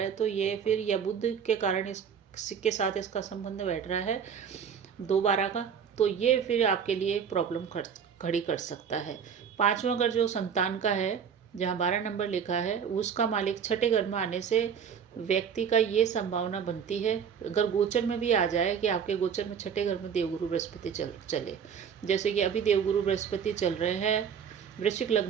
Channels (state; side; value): quieter; left; 7.4 dB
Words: है तो ये फिर, या बुध के कारण इसके साथ इसका संबंध बैठ रहा है 2/12 का, तो ये फिर आपके लिए प्रॉब्लम खड़ी कर सकता है। 5वां घर जो संतान का है, जहाँ 12 नंबर लिखा है, उसका मालिक 6ठे घर में आने से व्यक्ति का ये संभावना बनती है, अगर गोचर में भी आ जाए कि आपके गोचर में 6ठे घर में देवगुरु बृहस्पति चले, जैसे कि अभी देवगुरु बृहस्पति चल रहे हैं वृश्चिक